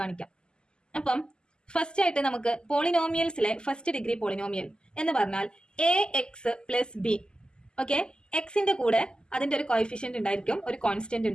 കാണിക്കാം. അപ്പം ഫസ്റ്റ് ആയിട്ട് നമുക്ക് പോളിനോമിയൽസിലെ ഫസ്റ്റ് ഡിഗ്രി പോളിനോമിയൽ എന്ന് പറഞ്ഞാൽ A X plus B. Okay, എക്സിന്റെ കൂടെ അതിന്റെ ഒരു കോയിഫിഷ്യന്റ് ഉണ്ടായിരിക്കും, ഒരു കോൺസ്റ്റന്റ്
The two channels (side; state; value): right; late; 0.047 ms